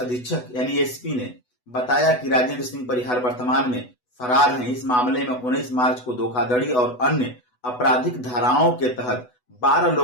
यानी SP ने बताया कि राजेंद्र सिंह परिहार वर्तमान में फरार हैं। इस मामले में 19 मार्च को धोखाधड़ी और अन्य आपराधिक धाराओं के तहत 12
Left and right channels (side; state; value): right; late; 8.1 ms